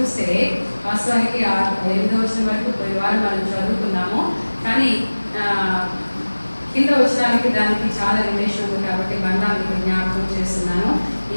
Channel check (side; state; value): both; inverted; correlation -1.00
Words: వాస్తవానికి 8వ వచనం వరకు పోయిన వారం మనం చదువుకున్నాము. కానీ కింద వచనాలకి దానికి చాలా రిలేషన్ ఉంది కాబట్టి మళ్ళా మీకు జ్ఞాపకం చేస్తున్నాను.